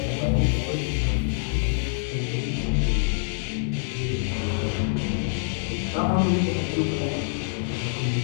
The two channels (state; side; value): silent; right; 61 dB below the other